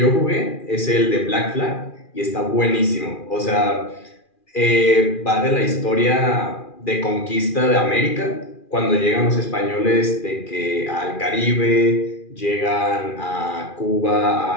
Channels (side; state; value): right; late; 2.4 ms